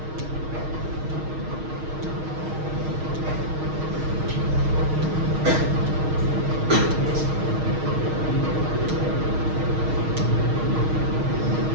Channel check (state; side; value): late; left; 6.4 ms